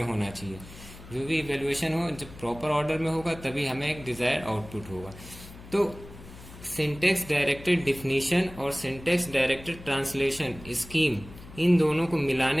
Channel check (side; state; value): left; noise; hum, 17 dB below the sound